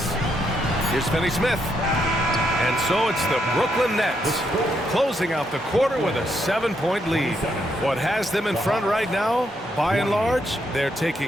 Here's Finney-Smith. And so it's the Brooklyn Nets closing out the quarter with a 7-point lead. What has them in front right now, by and large, they're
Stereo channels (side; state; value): both; normal; correlation 0.77